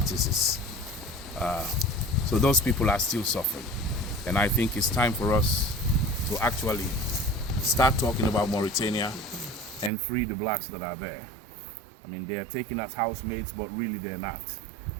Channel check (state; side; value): drops out; left; at 9.9 s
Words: So those people are still suffering. And I think it's time for us to actually start talking about Mauritania and free the blacks that are there. I mean, they're taken as housemates, but really they're not.